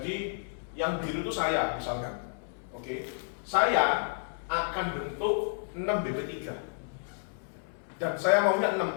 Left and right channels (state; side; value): silent; right; 57 dB below the other